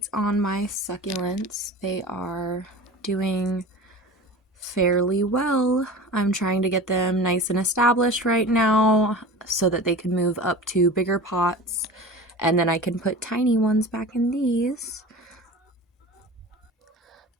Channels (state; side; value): normal; both; correlation 0.34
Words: on my succulents. They are doing fairly well. I'm trying to get them nice and established right now so that they can move up to bigger pots, and then I can put tiny ones back in these.